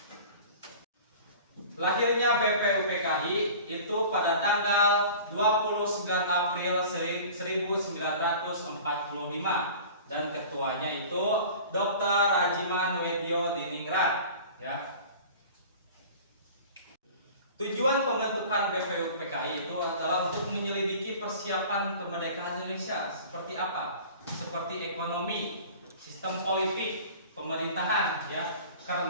Lahirnya BPUPKI itu pada tanggal 29 April 1945 dan ketuanya itu Dr. Rajiman Wedyo Diningrat ya. Tujuan pembentukan BPUPKI itu adalah untuk menyelidiki persiapan kemerdekaan Indonesia seperti apa? Seperti ekonomi, sistem politik, pemerintahan ya.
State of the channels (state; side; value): inverted; both; correlation -0.41